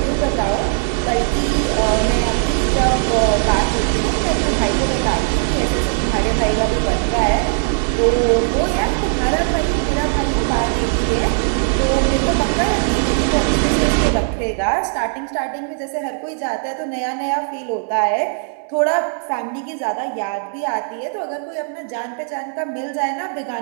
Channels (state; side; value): silent; left; digital silence